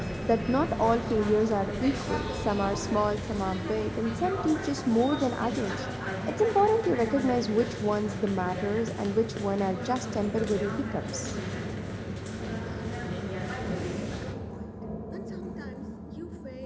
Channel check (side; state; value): both; identical; correlation 1.00